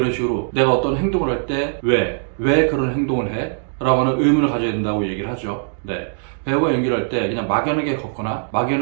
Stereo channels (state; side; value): silent; left; digital silence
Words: 식으로 내가 어떤 행동을 할 때 왜 그런 행동을 해? 라고 하는 의문을 가져야 된다고 얘기를 하죠. 네. 배우가 연기를 할 때 그냥 막연하게 걷거나